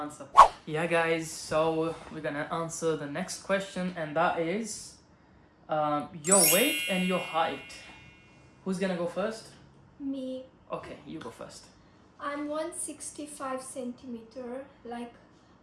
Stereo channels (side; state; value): both; identical; correlation 1.00